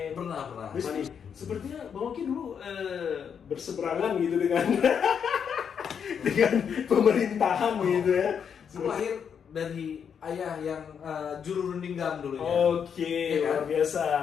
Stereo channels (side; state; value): right; quieter; 7.4 dB